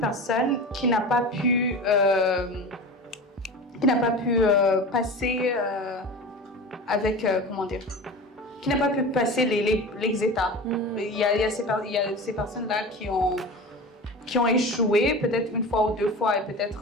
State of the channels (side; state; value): both; normal; correlation 0.31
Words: qui n'a pas pu, passer avec, comment dire, qui n'a pas pu passer les états. Il y a ces personnes-là qui ont échoué peut-être une fois ou deux fois et